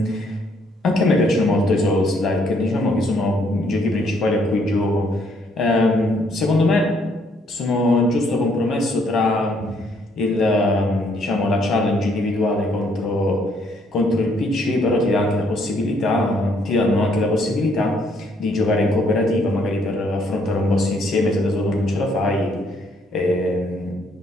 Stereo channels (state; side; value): normal; both; correlation 0.68